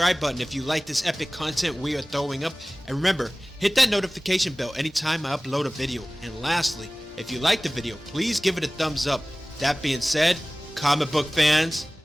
button if you like this epic content we are throwing up. And remember, hit that notification bell anytime I upload a video. And lastly, if you like the video, please give it a thumbs up. That being said, comic book fans,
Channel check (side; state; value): both; normal; correlation 0.98